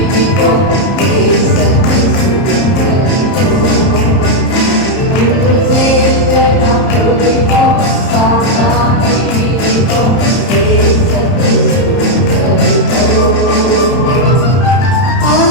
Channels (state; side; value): late; right; 31 ms